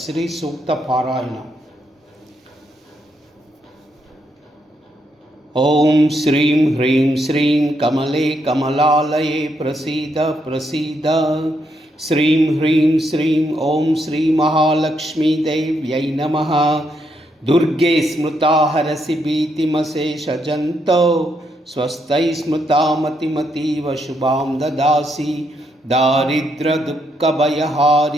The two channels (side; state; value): both; normal; correlation 0.77